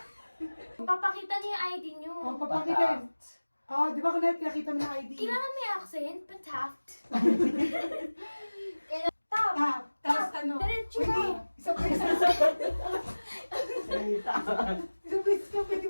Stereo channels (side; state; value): both; inverted; correlation -1.00